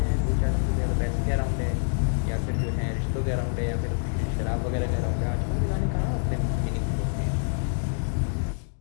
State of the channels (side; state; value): right; silent; digital silence